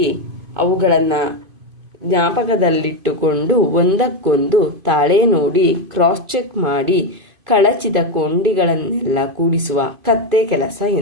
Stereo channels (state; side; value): late; left; 2.5 ms